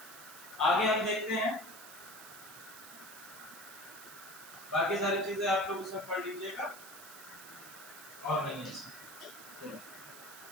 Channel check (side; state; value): right; noise; hiss, 14 dB below the sound